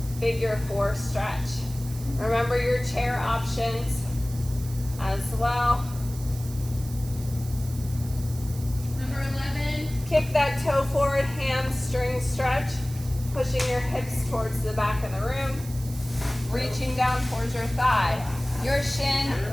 figure four stretch. Remember your chair options as well. Number 11. Kick that toe forward, hamstring stretch. Pushing your hips towards the back of the room. Reaching down towards your thigh, your shin,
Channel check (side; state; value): right; noise; hiss, 16 dB below the sound